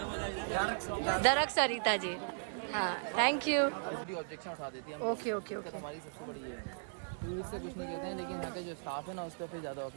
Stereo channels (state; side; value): silent; left; digital silence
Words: दरक सरिता जी। हाँ, थैंक यू। इसकी ऑब्जेक्शन उठा देती है। ओके ओके ओके हमारी सबसे बड़ी ये है, टूरिस्ट से कुछ नहीं कहते हैं, लेकिन यहाँ का जो स्टाफ है ना उस पर फिर ज़्यादा